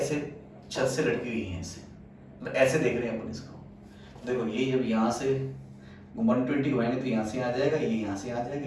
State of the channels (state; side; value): identical; both; correlation 1.00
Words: छत से लटकी हुई है ऐसे, मतलब ऐसे देख रहे हैं अपन इसको। देखो ये जब यहाँ से 120 घुमाएंगे तो यहाँ से आ जाएगा, ये यहाँ से आ जाएगा,